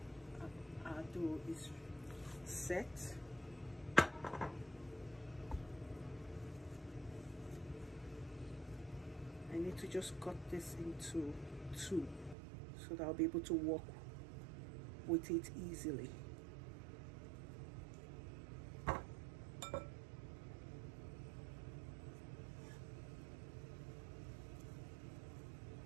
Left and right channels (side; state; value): left; drops out; at 12.4 s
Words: our dough is set. I need to just cut this into two so that I'll be able to work with it easily.